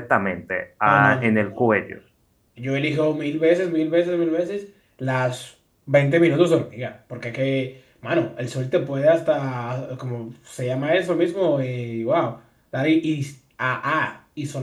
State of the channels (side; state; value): both; identical; correlation 1.00